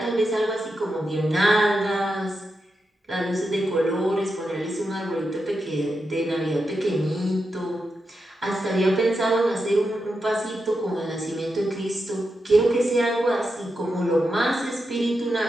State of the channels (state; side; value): normal; both; correlation 0.87